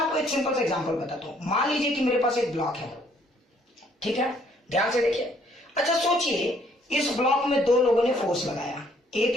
आपको एक सिंपल सा एग्जांपल बताता हूं। मान लीजिए कि मेरे पास एक ब्लॉक है, ठीक है, ध्यान से देखिए। अच्छा सोचिए इस ब्लॉक में दो लोगों ने फोर्स लगाया, एक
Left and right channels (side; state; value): both; normal; correlation 0.64